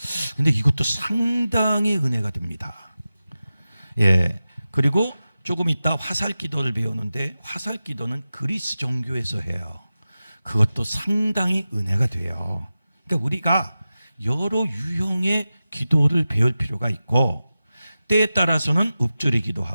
근데 이것도 상당히 은혜가 됩니다. 그리고 조금 이따 화살 기도를 배우는데 화살 기도는 그리스 종교에서 해요. 그것도 상당히 은혜가 돼요. 그러니까 우리가 여러 유형의 기도를 배울 필요가 있고 때에 따라서는 읊조리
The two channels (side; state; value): both; inverted; correlation -0.94